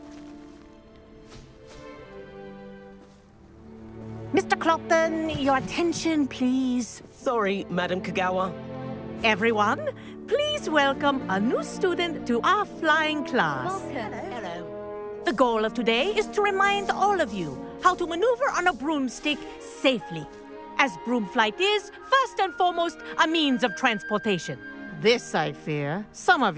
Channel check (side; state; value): both; identical; correlation 1.00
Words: Mr. Clopton, your attention, please. Sorry, Madam Kagawa. Everyone, please welcome a new student to our flying class. Welcome. Hello. The goal of today is to remind all of you how to maneuver on a broomstick safely, as broom flight is, first and foremost, a means of transportation. This, I fear, some of